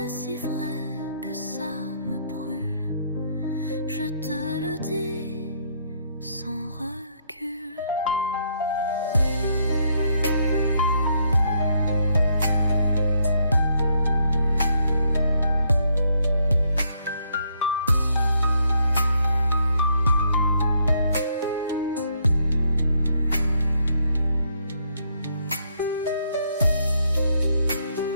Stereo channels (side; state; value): both; inverted; correlation -0.72